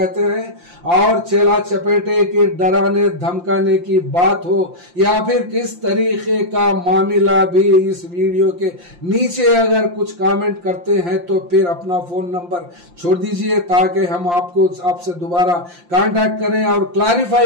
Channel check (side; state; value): left; late; 5.7 ms